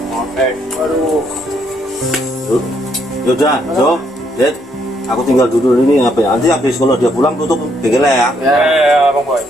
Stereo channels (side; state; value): both; normal; correlation 0.72